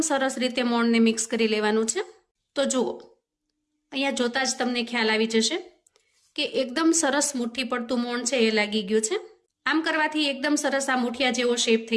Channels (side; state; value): both; identical; correlation 1.00